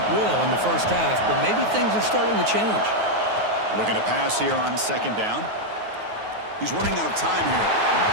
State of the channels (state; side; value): late; left; 9.4 ms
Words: will in the first half, but maybe things are starting to change. Looking to pass here on 2nd down. He's running out of time here.